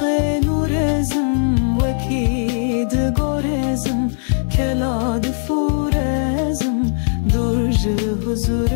نورزم وکید گورزم کلاد فورزم درج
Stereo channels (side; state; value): right; silent; digital silence